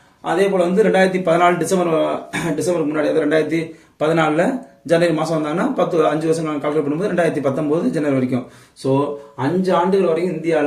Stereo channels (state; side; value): identical; both; correlation 1.00